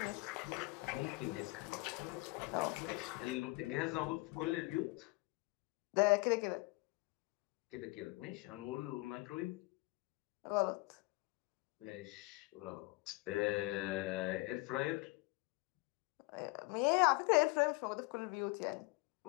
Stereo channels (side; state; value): right; quieter; 24.3 dB